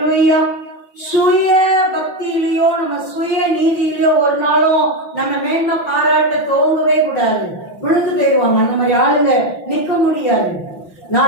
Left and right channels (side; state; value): right; late; 5.9 ms